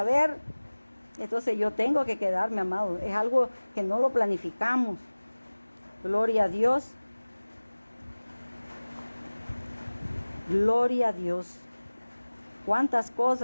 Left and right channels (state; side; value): inverted; both; correlation -1.00